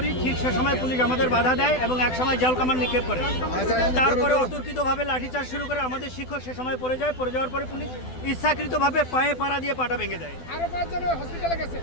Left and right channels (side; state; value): right; late; 12 ms